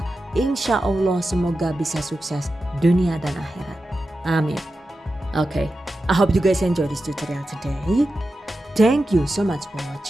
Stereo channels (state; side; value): normal; both; correlation 0.91